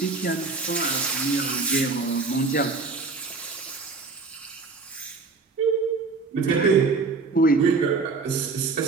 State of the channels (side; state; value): left; quieter; 4.2 dB